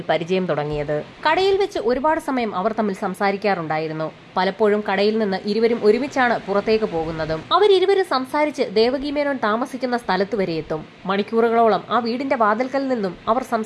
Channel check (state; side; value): identical; both; correlation 1.00